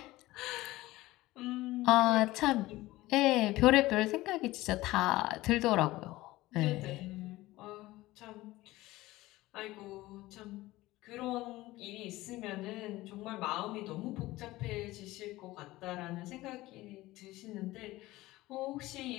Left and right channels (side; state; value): right; quieter; 18.1 dB